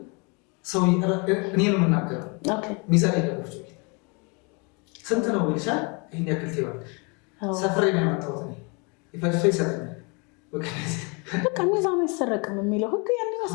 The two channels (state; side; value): quieter; right; 31.9 dB